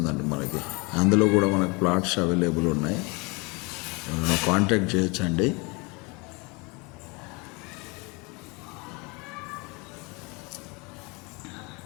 మనకి. అందులో కూడా మనకు ప్లాట్స్ అవైలబుల్ ఉన్నాయి. కాంటాక్ట్ చేయొచ్చండి.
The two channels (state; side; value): quieter; right; 28.4 dB